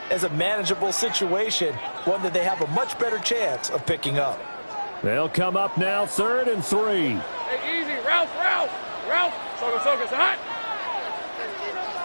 as a manageable situation, one that they have a much better chance of picking up. They'll come up now 3rd and 3. Hey, easy, Ralph. Soga, it's hot.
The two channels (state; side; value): inverted; both; correlation -1.00